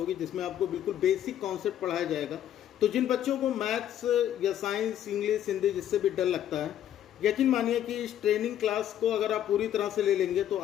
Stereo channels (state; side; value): quieter; right; 11.0 dB